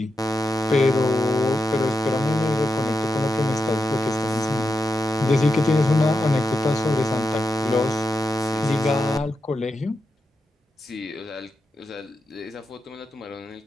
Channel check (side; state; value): both; normal; correlation 0.88